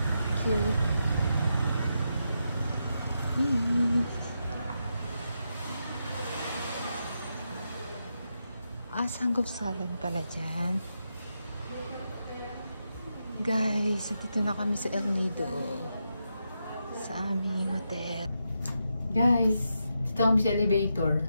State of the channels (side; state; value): both; inverted; correlation -0.85